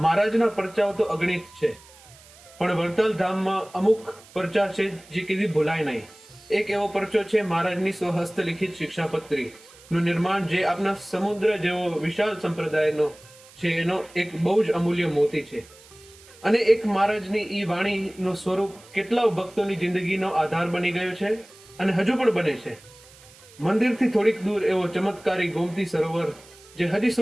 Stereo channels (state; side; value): noise; right; hiss, 23 dB below the sound